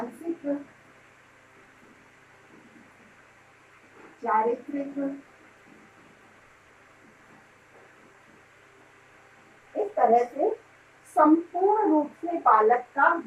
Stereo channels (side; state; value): both; identical; correlation 1.00